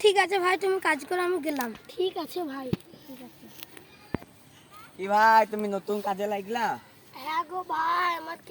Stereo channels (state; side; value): identical; both; correlation 1.00